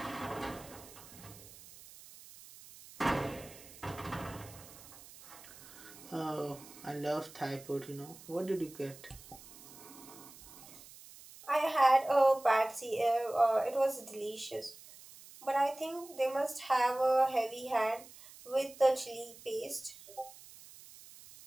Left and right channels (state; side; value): noise; right; hiss, 19 dB below the sound